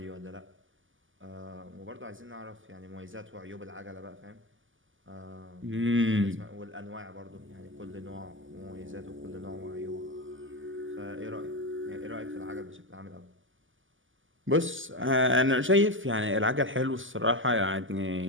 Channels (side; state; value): left; late; 0.57 ms